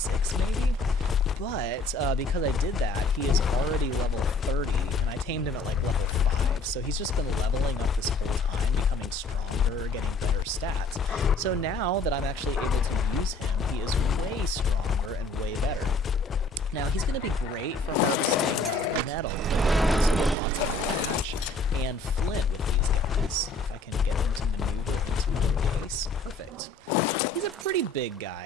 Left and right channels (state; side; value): quieter; right; 3.2 dB